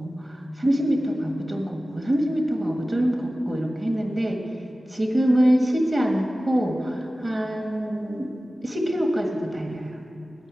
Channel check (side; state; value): both; normal; correlation 0.96